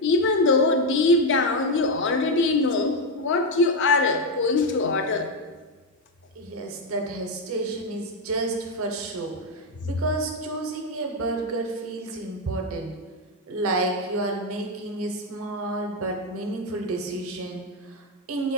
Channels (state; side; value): normal; both; correlation 0.06